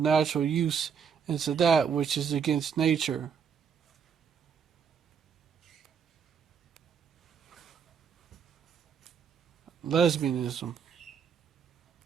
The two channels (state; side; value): quieter; left; 7.0 dB